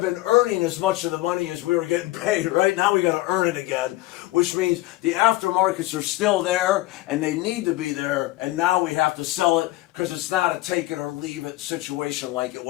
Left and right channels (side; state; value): right; quieter; 18.2 dB